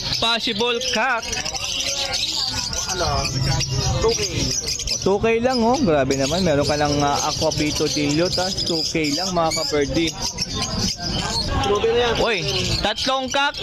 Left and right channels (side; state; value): both; identical; correlation 1.00